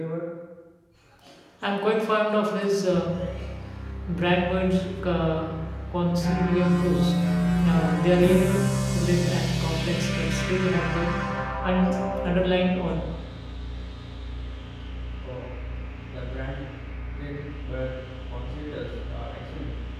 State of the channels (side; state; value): both; identical; correlation 1.00